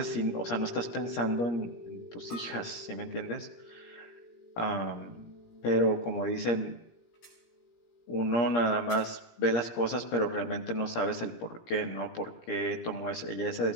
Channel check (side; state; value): right; late; 17 ms